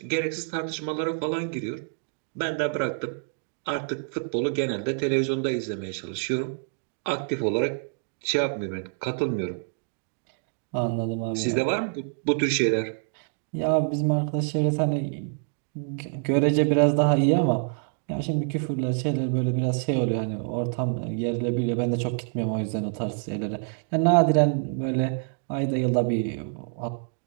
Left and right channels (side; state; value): left; silent; 60 dB below the other